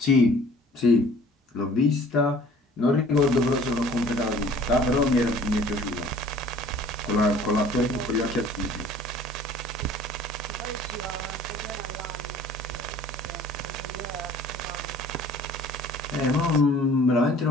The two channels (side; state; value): both; normal; correlation 0.51